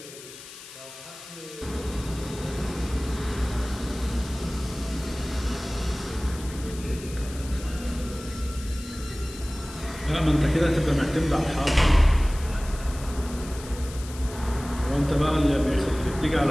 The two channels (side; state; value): left; noise; hiss, 15 dB below the sound